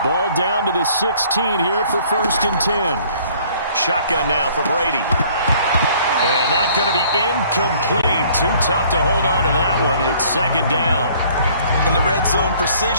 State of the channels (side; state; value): both; inverted; correlation -0.57